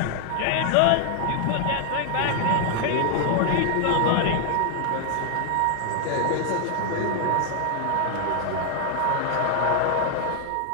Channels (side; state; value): both; different; correlation 0.00